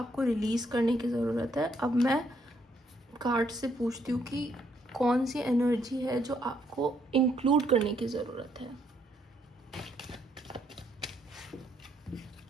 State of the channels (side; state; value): both; normal; correlation 0.72